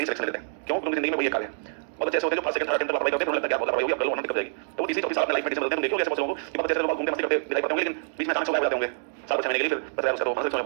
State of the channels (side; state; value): left; silent; digital silence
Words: ही सिलेक्शन ले लेते हैं, क्यों? क्योंकि जिंदगी में वही एक कार्य है, बहुत अच्छे होते हैं जो फर्स्ट सेकंड थर्ड टेंथ लापरवाही करते हैं, उन्हें लगता है यार बहुत लापरवाही होगी, अब कर लो वरना दिक्कत हो जाएगी। तो वो तीसरी चौथी साल अपने लाइफ में डिसीजन मिलते हैं, देखो ऐसे बहुत लोगों को कि बहुत अच्छे से लोग घूमते मस्ती करते दिखाई पड़ते होंगे, लेकिन बीच में अचानक से गायब हो जाते होंगे साल कुछ महीने के लिए, फिर बस यार उसका तो मानसिक सोच